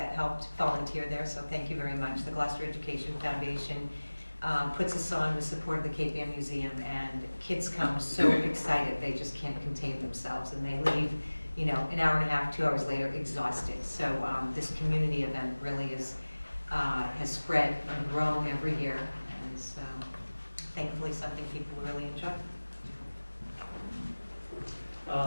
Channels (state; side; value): inverted; both; correlation -1.00